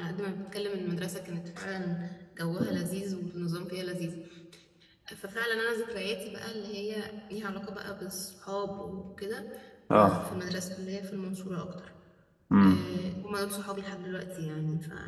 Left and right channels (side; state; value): both; identical; correlation 1.00